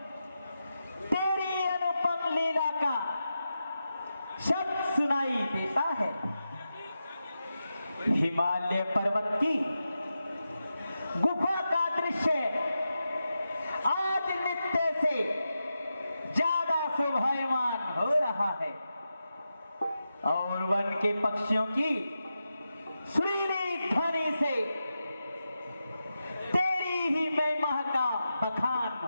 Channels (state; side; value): inverted; both; correlation -0.90